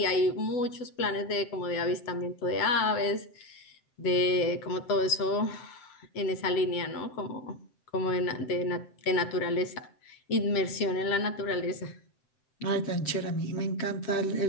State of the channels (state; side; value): late; right; 7.9 ms